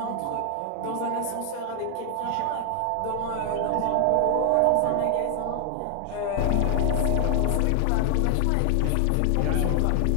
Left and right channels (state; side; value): different; both; correlation 0.00